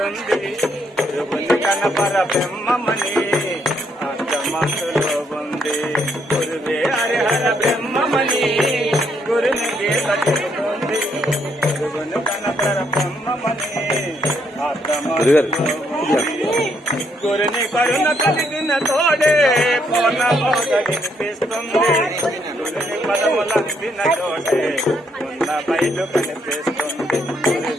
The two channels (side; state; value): both; normal; correlation 0.73